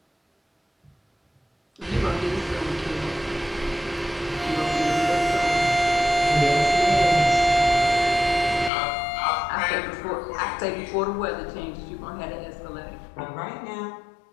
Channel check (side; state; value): right; drops out; at 8.7 s